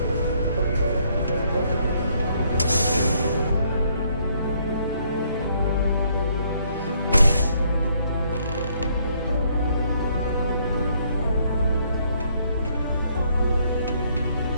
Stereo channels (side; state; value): both; inverted; correlation -0.68